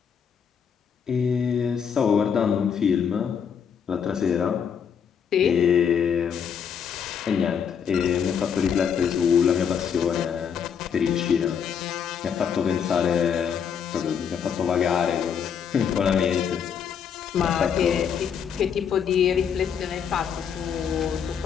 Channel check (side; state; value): right; quieter; 7.5 dB